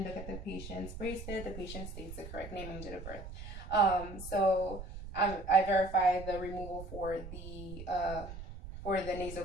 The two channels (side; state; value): right; noise; rumble, 11 dB below the sound